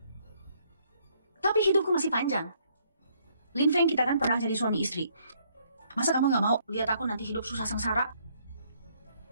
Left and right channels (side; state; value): both; inverted; correlation -0.68